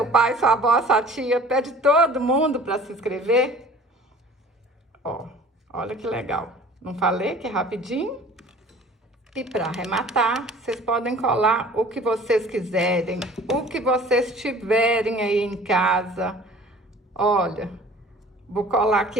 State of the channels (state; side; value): normal; both; correlation 0.47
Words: pai, sua avó, sua tia, pede todo mundo para se inscrever. Ó, olha que legal. Não falei que é rapidinho? E para arrematar, vocês podem colar o que vocês quiserem, o que vocês tiverem aí em casa. Olha, vou colar aqui